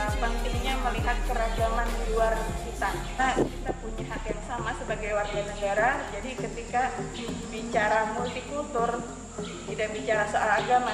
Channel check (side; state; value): both; identical; correlation 1.00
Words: pentingnya melihat keragaman di luar kita. Kita punya hak yang sama sebagai warga negara. Jadi ketika bicara multikultur, tidak bicara soal agama,